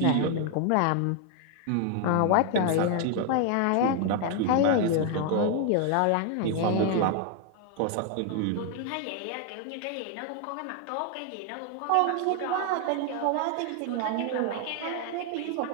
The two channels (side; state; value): both; different; correlation 0.00